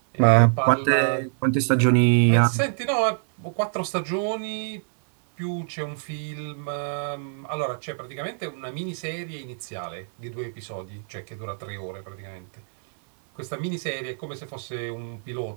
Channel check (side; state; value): left; silent; digital silence